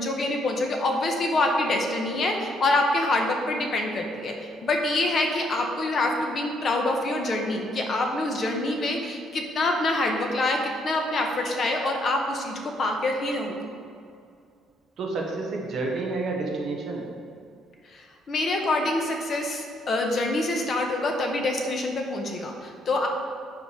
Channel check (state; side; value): normal; both; correlation 0.71